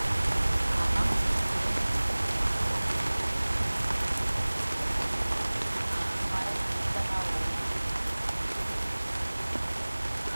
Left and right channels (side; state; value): both; inverted; correlation -1.00